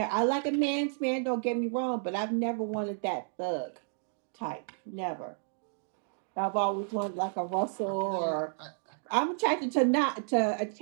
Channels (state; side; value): silent; left; digital silence